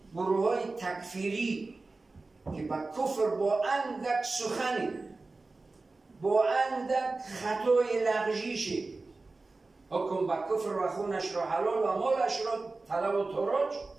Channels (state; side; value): quieter; left; 3.5 dB